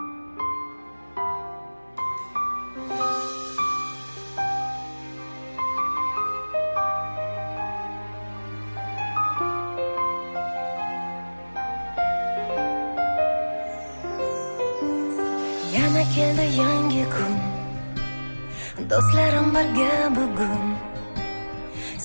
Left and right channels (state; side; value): inverted; both; correlation -1.00